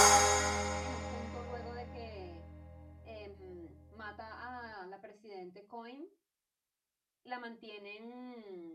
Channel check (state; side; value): identical; both; correlation 1.00